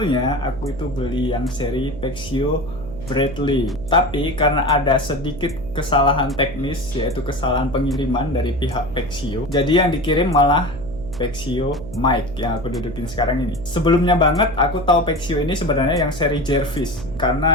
aku itu beli yang seri Pexio Bradley. Tapi karena ada sedikit kesalahan teknis, yaitu kesalahan pengiriman dari pihak Pexio, jadi yang dikirim malah Pexio Mic yang aku dudukin sekarang ini. Sebelumnya banget aku tahu Pexio ini sebenarnya yang seri Jervis,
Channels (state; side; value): noise; right; hum, 12 dB below the sound